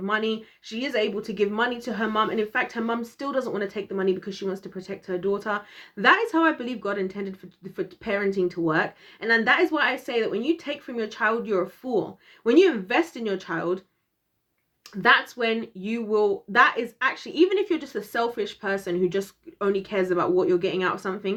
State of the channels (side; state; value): both; identical; correlation 1.00